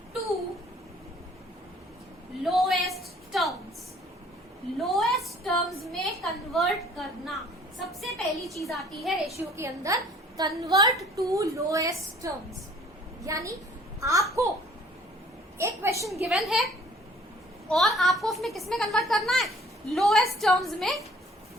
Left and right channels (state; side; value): normal; both; correlation 0.55